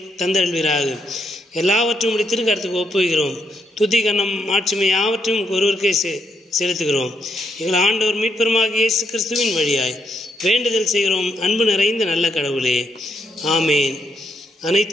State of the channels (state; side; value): normal; both; correlation 0.77